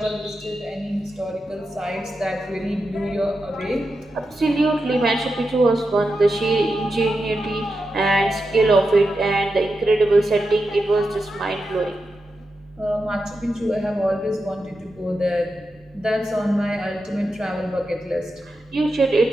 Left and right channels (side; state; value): both; normal; correlation 0.88